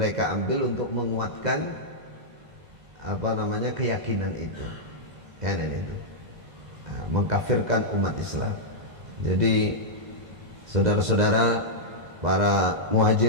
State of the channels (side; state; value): left; late; 2.0 ms